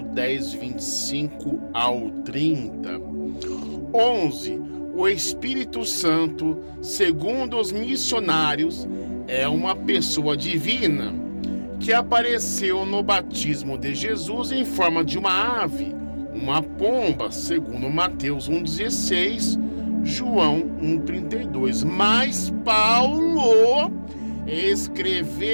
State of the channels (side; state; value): both; inverted; correlation -1.00